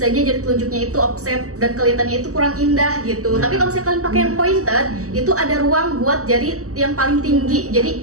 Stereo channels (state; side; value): late; left; 0.66 ms